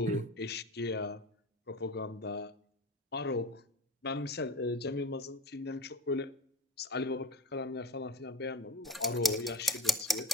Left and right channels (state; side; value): normal; both; correlation 0.32